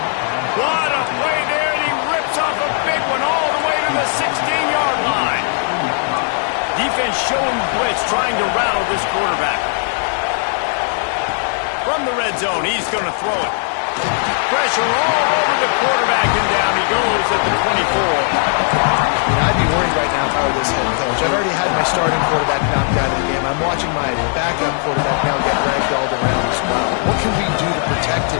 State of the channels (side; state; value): right; silent; 55 dB below the other